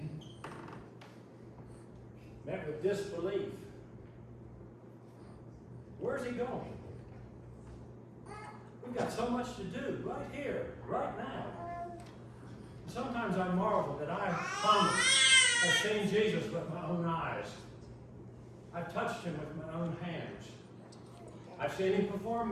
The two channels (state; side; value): identical; both; correlation 1.00